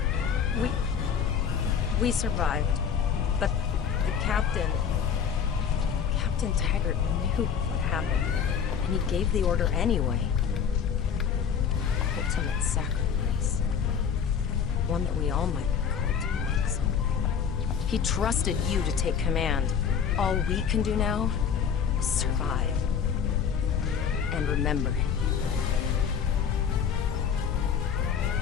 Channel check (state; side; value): quieter; right; 7.3 dB